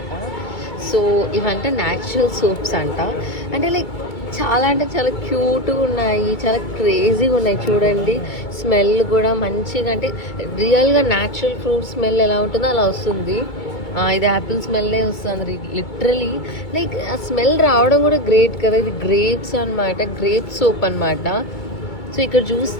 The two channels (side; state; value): right; late; 2.2 ms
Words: సో ఇవంటే న్యాచురల్ సోప్స్ అంట. అంటే లైక్ చాలా అంటే చాలా క్యూట్గా ఉన్నాయి, చాలా క్రేజీగా ఉన్నాయి. చూడండి, స్మెల్ కూడా మంచిగా, అంటే రియల్గా న్యాచురల్ ఫ్రూట్ స్మెల్ ఎలా ఉంటుందో అలా వస్తుంది. ఇది యాపిల్ స్మెల్లే వస్తుంది లిటరలీ. లైక్ ఆ స్మెల్ రావడం కూడా గ్రేట్ కదా. ఇది గ్రేప్స్ అనమాట, గ్రేప్ సోప్ అనమాట. సో ఇక్కడ